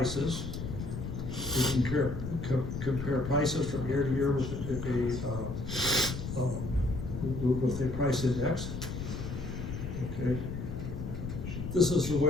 We can compare prices from year to year with a price index. Okay, this is the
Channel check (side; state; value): left; noise; rumble, 6 dB below the sound